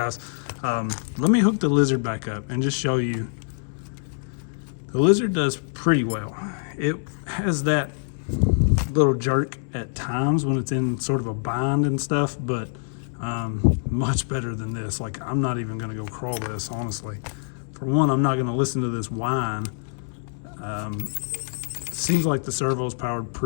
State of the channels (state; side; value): silent; right; 62 dB below the other